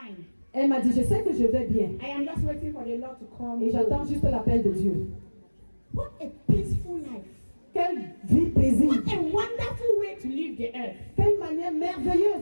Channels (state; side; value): inverted; both; correlation -1.00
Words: Elle m'a dit, je sais que je vais bien. I am just waiting for the Lord to come. Et j'attends juste l'appel de Dieu. What a peaceful life. Quelle vie paisible. What a wonderful way to leave the earth. Quelle manière merveilleuse